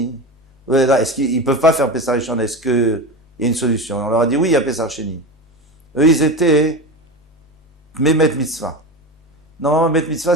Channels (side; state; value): both; normal; correlation 0.24